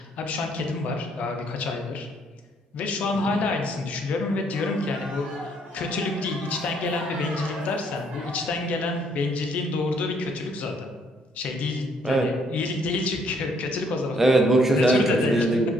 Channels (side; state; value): both; normal; correlation 0.67